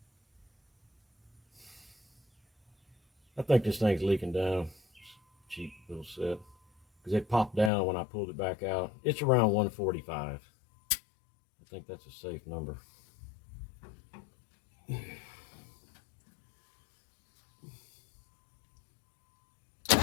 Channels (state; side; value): drops out; right; at 7.7 s